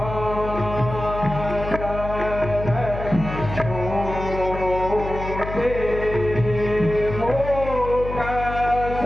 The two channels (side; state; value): left; noise; hum, 8 dB below the sound